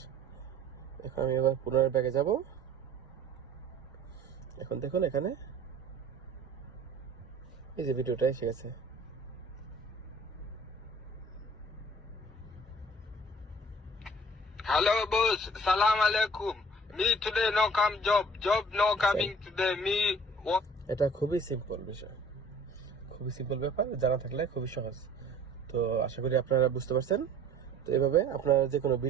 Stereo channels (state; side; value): normal; both; correlation 0.49